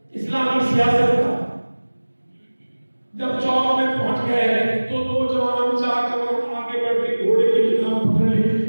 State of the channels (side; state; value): both; inverted; correlation -1.00